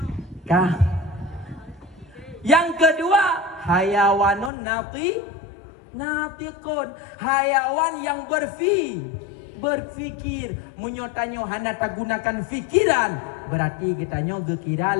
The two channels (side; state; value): right; drops out; at 4.5 s